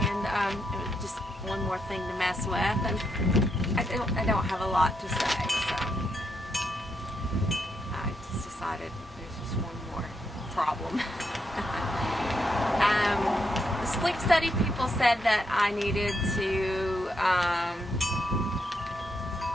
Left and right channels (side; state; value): both; normal; correlation 0.80